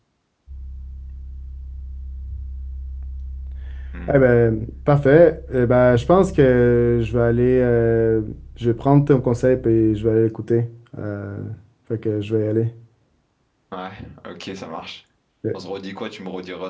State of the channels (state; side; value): identical; both; correlation 1.00